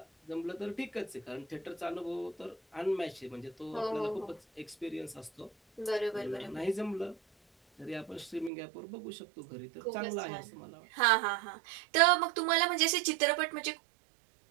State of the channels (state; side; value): drops out; left; at 8.5 s